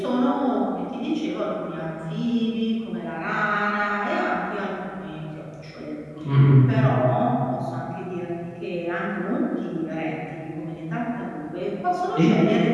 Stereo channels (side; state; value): both; identical; correlation 1.00